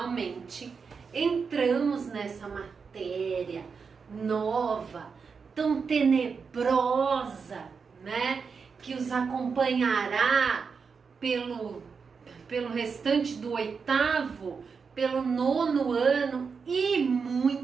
entramos nessa matéria nova, tão tenebrosa, né? Que os acompanhará pelo restante do oitavo, pelo nono ano e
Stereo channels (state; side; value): quieter; left; 5.5 dB